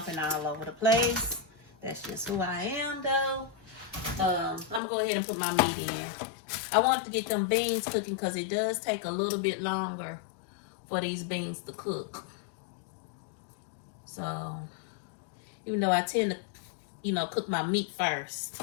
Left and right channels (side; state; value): right; drops out; at 4.8 s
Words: all over the place. That's just who I am though. I'm gonna go ahead and put my meat in. I wanted to get them beans cooking because it does take a little bit longer for these beans to cook. So, even though I tend to, you know, cook my meat first.